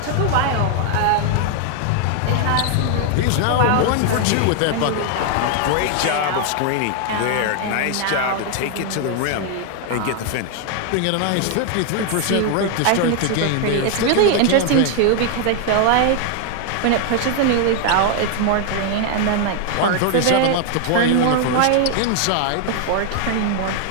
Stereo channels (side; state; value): both; different; correlation 0.00